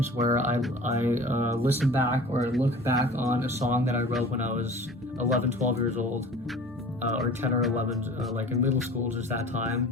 where I listen back or look back on a song that I wrote when I was 11, 12 years old, or 10 or 11, like in middle school, just that time,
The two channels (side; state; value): both; normal; correlation 0.43